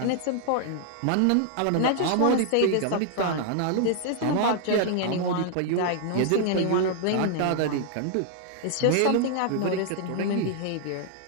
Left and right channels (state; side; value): different; both; correlation 0.00